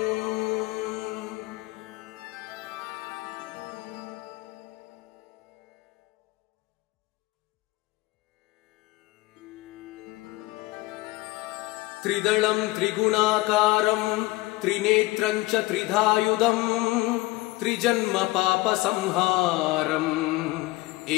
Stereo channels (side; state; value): right; quieter; 20.3 dB